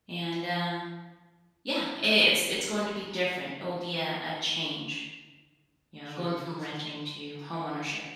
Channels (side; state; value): both; identical; correlation 1.00